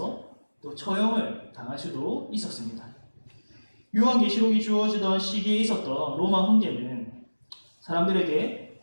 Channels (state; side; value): inverted; both; correlation -1.00